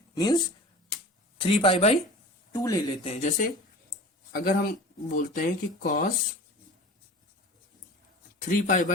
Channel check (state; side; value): normal; both; correlation 0.37